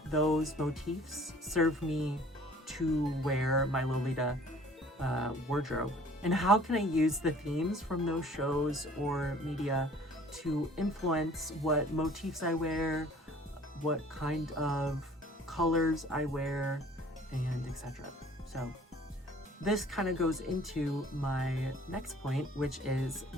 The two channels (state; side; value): normal; both; correlation 0.52